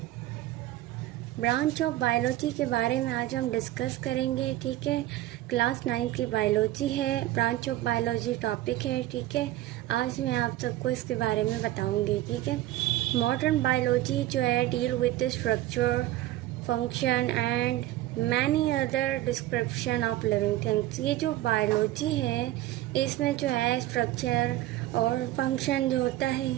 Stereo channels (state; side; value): quieter; left; 15.2 dB